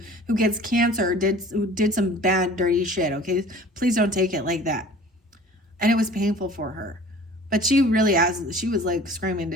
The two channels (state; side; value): normal; both; correlation 0.46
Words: gets cancer who did some bad, dirty shit, okay? Please don't take it like that. And it was painful for her. But she really she was like screaming to